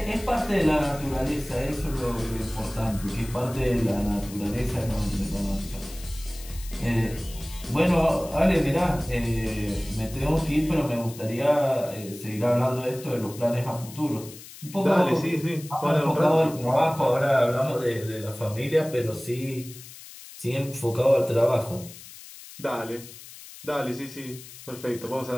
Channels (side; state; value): left; noise; hiss, 16 dB below the sound